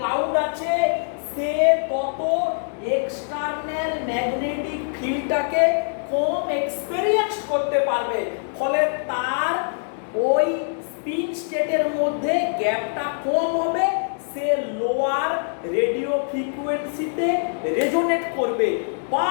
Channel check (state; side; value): silent; right; digital silence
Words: আছে, সে তত এক্সটার্নাল ম্যাগনেটিক ফিল্ডটাকে কম এক্সপেরিয়েন্স করতে পারবে, ফলে তার ওই স্পিন স্টেটের মধ্যে গ্যাপটা কম হবে, সে লোয়ার রেডিও ফ্রিকোয়েন্সিতে রেজোনেট করবে বা